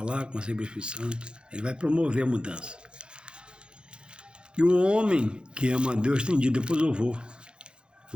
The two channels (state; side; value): late; left; 0.052 ms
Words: com você pelo Espírito Santo, ele vai promover a mudança. E o homem que ama a Deus tem dito, depois eu vou,